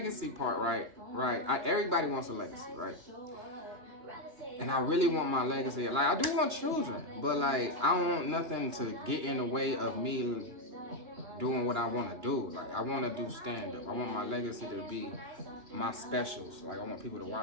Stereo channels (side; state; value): left; late; 2.9 ms